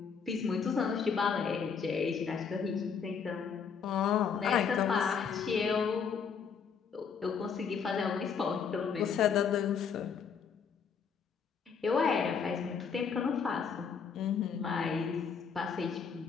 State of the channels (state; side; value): quieter; right; 6.4 dB